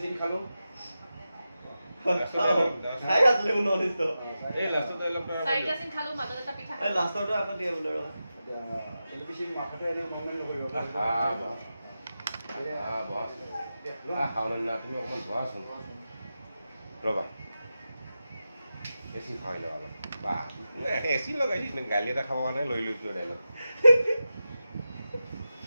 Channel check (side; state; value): both; inverted; correlation -0.92